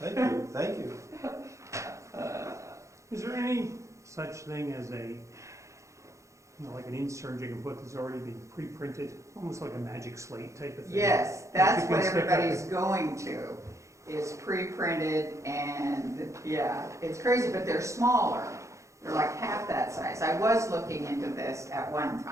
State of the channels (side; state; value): left; late; 0.15 ms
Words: you, thank you. Is there any such thing as a, like an insert you can put that's already been pre-printed, almost like a magic slate type of thing? Yes, that's You can what stick up everybody's the- going to, is pre-printed, and, yeah, it's crazy, but they're smaller. They're like half that size. I was looking into this at one